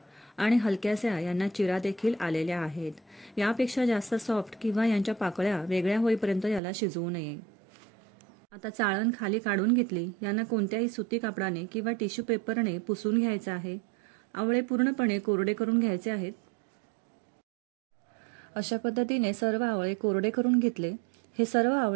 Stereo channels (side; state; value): left; drops out; at 6.6 s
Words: आणि हलक्याशा यांना चिरा देखील आलेल्या आहेत। यापेक्षा जास्त सॉफ्ट किंवा यांच्या पाकळ्या वेगळ्या होईपर्यंत याला शिजवू नये। आता चाळण खाली काढून घेतली। यांना कोणत्याही सुती कापडाने किंवा टिश्यू पेपरने पुसून घ्यायचं आहे। आवळे पूर्णपणे कोरडे करून घ्यायचे आहेत। अशा पद्धतीने सर्व आवळे कोरडे करून घेतले। हे सर्व